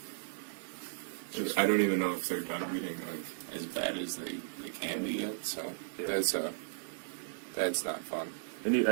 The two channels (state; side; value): silent; left; digital silence